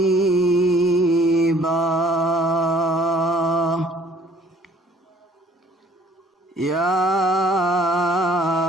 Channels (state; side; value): normal; both; correlation 0.58